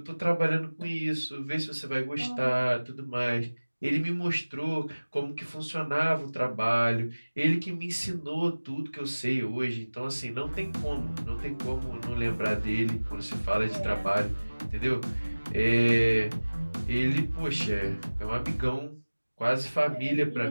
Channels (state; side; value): inverted; both; correlation -1.00